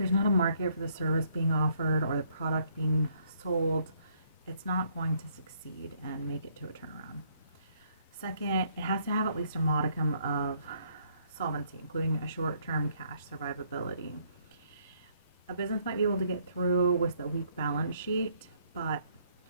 not a market for the service being offered or the product being sold, it's not going to succeed and make it to a turnaround. Second, it has to have at least a modicum of solvency, including a short-term cash survivability. A business might be able to get through with a weak balance sheet, but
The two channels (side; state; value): both; inverted; correlation -0.68